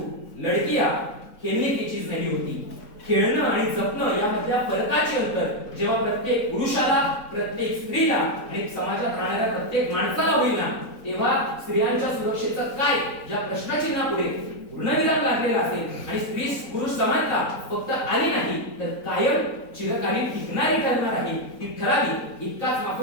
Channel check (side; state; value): right; late; 4.0 ms